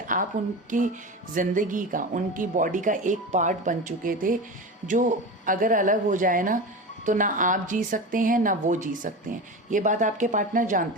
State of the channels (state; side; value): normal; both; correlation 0.26